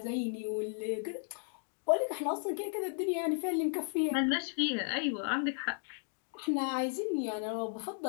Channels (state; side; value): silent; right; 55 dB below the other